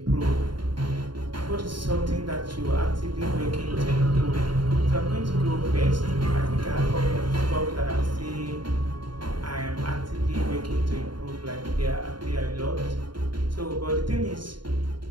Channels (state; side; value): late; left; 0.72 ms